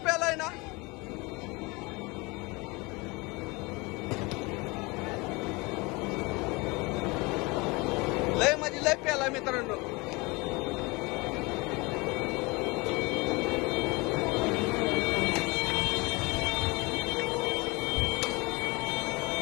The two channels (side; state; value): right; quieter; 25.5 dB